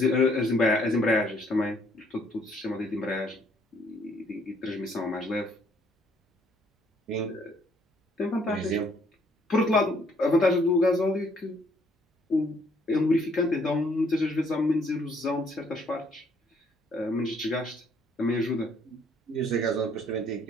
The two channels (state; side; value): normal; both; correlation 0.65